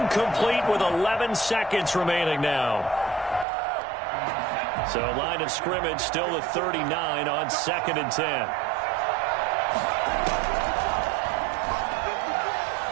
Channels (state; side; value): drops out; left; at 3.5 s